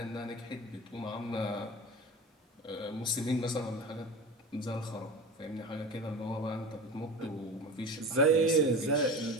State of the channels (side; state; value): both; normal; correlation 0.32